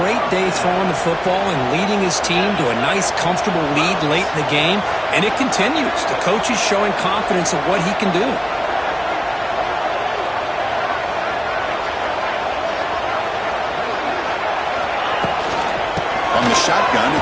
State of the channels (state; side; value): identical; both; correlation 1.00